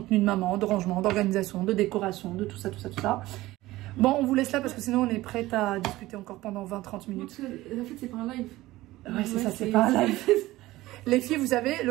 de maman, de rangement, d'organisation, de décoration, de tout ça. Bon, on vous laisse là parce que sinon on est prête à discuter encore pendant 20-30 minutes. En fait, c'est pas un live. Ouais, c'est ça, c'est pas un live. Les filles, vous savez,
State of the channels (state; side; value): quieter; left; 17.6 dB